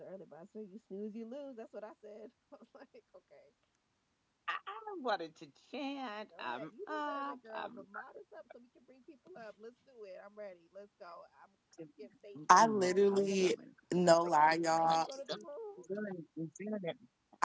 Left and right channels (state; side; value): identical; both; correlation 1.00